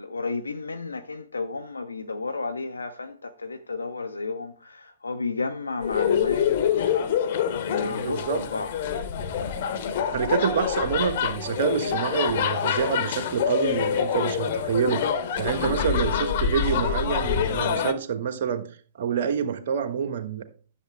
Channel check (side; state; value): both; inverted; correlation -0.49